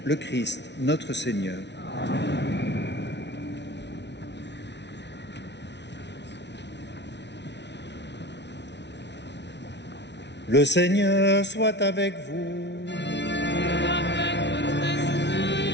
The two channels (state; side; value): late; right; 0.50 ms